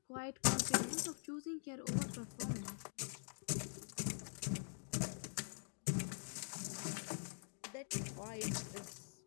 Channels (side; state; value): right; silent; digital silence